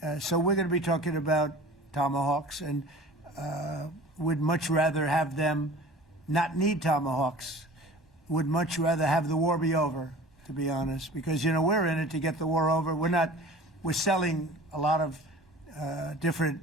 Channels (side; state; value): both; normal; correlation 0.41